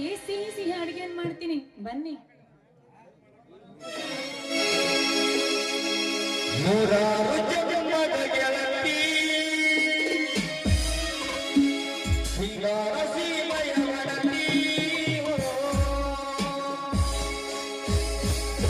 ಸಿಹಿ ಸಿಹಿ ಅಡಿಗೆಯನ್ನು ಮಾಡ್ತೀನಿ, ಬನ್ನಿ.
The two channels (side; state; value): both; identical; correlation 1.00